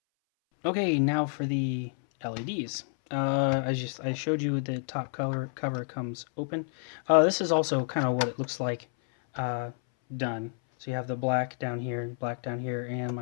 Okay, now for the LEDs. I showed you the top cover comes open. This is also kind of what it looks like done. So you have the black down here, and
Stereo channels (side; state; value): right; silent; 58 dB below the other